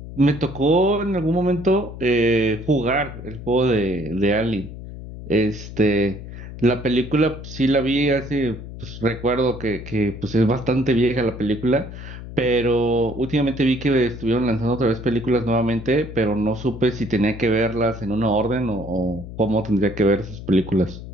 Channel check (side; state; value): left; noise; hum, 12 dB below the sound